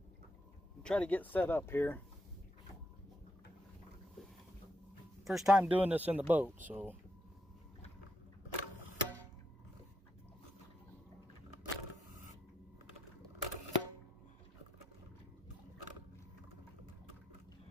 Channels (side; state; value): both; normal; correlation 0.80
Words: try to get set up here. First time doing this in the boat, so